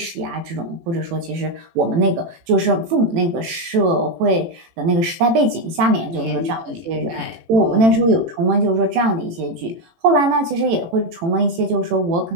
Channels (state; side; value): late; left; 18 ms